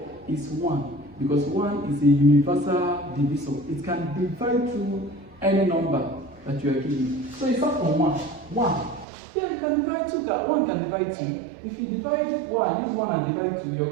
is 1. Because 1 is a universal divisor. It can divide through any number that you are given. So it's not from 1. 1. Yeah, you can divide 2. That 1 can divide 2. If you divide 1, use 1 and divide 2, you're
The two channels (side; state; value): left; drops out; at 9.1 s